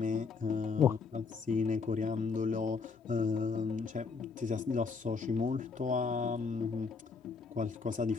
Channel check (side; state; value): right; quieter; 4.9 dB